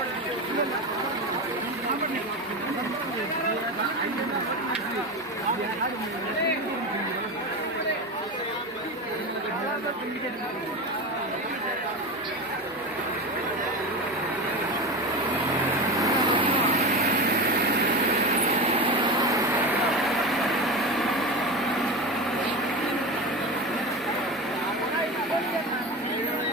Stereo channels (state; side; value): normal; both; correlation 0.23